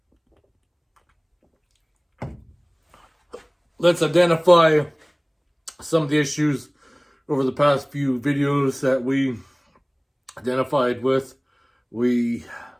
Let's identify some of the issues over the past few videos that we identified with. We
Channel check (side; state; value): both; identical; correlation 1.00